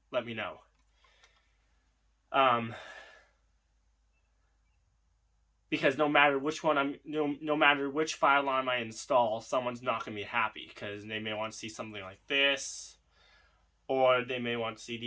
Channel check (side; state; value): both; identical; correlation 1.00